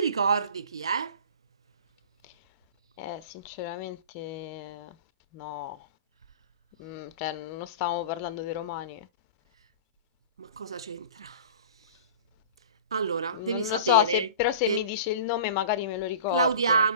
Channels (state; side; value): inverted; both; correlation -0.38